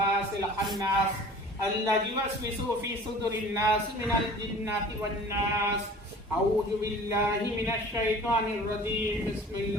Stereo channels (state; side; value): normal; both; correlation 0.44